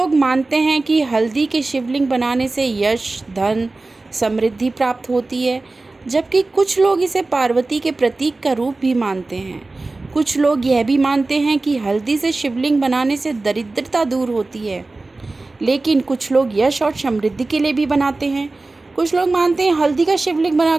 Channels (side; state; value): left; quieter; 3.3 dB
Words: मानते हैं कि हल्दी के शिवलिंग बनाने से यश, धन, समृद्धि प्राप्त होती है, जबकि कुछ लोग इसे पार्वती के प्रतीक का रूप भी मानते हैं। कुछ लोग यह भी मानते हैं कि हल्दी से शिवलिंग बनाने से दरिद्रता दूर होती है, लेकिन कुछ लोग यश और समृद्धि के लिए भी बनाते हैं। कुछ लोग मानते हैं हल्दी का शिवलिंग बना